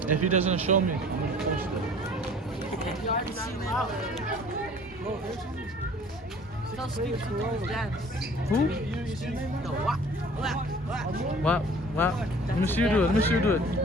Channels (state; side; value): normal; both; correlation 0.49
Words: If he doesn't show me, I'm gonna post it. You already seen it. Bro, there's something. So Steve dance. Who? No, what? Wow. Let me see you do it.